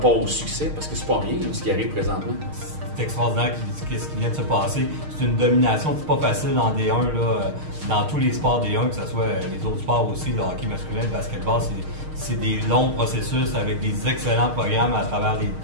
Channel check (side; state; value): left; late; 6.5 ms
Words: au succès? Parce que c'est pas rien là, ce qui arrive présentement. C'est extraordinaire ce qui vient de se passer. C'est une domination, c'est pas facile en D1, là, dans tous les sports D1, que ce soit les autres sports aussi, le hockey masculin, le basketball, c'est des longs processus avec des excellents programmes à travers